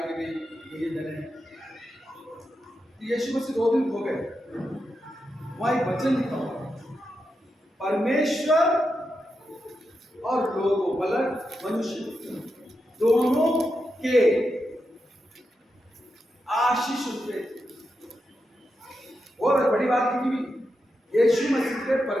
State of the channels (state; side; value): normal; both; correlation 0.87